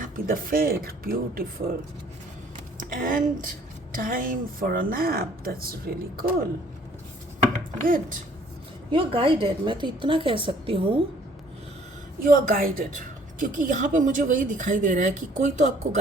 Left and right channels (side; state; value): both; normal; correlation 0.58